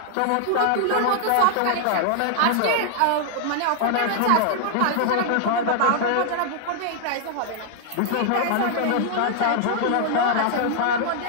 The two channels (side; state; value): both; different; correlation 0.00